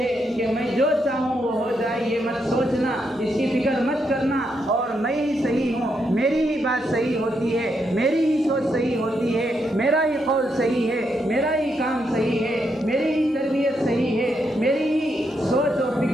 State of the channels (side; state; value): both; normal; correlation 0.80